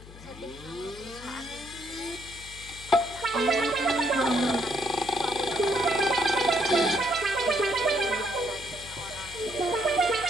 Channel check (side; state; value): left; noise; hum, 17 dB below the sound